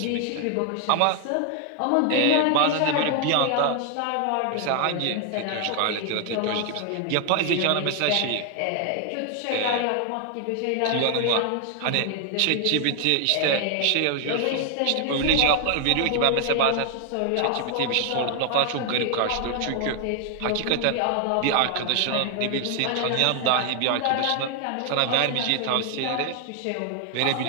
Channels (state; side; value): different; both; correlation 0.00